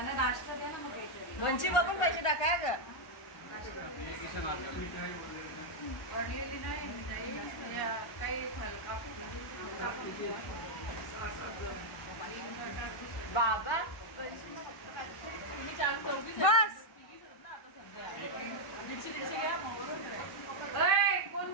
नाश्ता द्या ना मग लोणची बघून पैसे टाका ग पडलेली नाही काही बाबा तुम्ही 4-4 कोण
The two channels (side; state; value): right; late; 1.4 ms